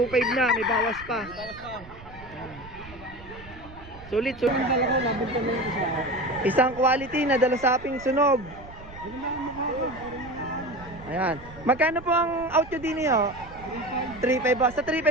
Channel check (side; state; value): right; noise; rumble, 18 dB below the sound